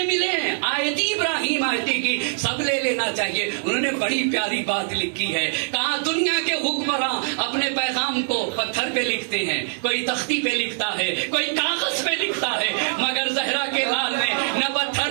ملے ہیں آیتی ابراہیم آیتی کی سب لے لینا چاہیے. انہوں نے بڑی پیاری بات لکھی ہے، کہا دنیا کے حکمراں اپنے پیغام کو پتھر پہ لکھتے ہیں، کوئی تختی پہ لکھتا ہے، کوئی کاغذ پہ لکھتا ہے، مگر زہرا کے لال نے نہ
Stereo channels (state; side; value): silent; left; digital silence